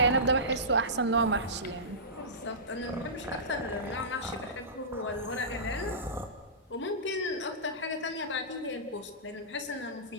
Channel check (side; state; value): both; normal; correlation -0.20